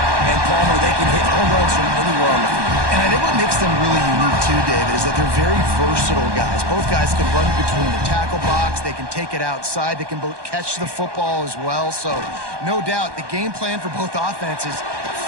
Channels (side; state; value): left; late; 1.2 ms